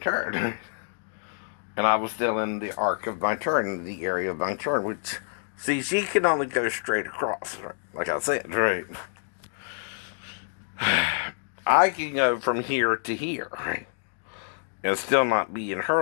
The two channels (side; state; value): right; silent; digital silence